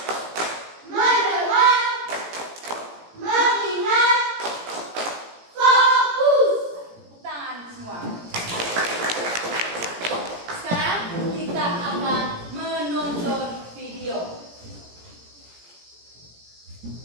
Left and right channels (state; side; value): late; left; 17 ms